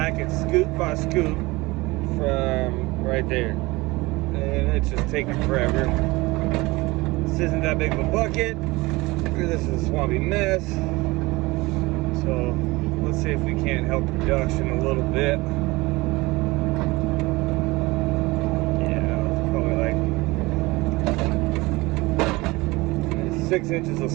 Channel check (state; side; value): quieter; left; 22.0 dB